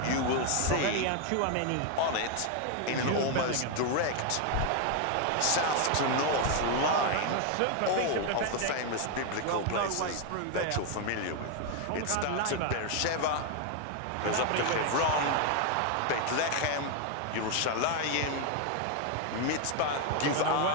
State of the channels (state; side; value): different; both; correlation 0.01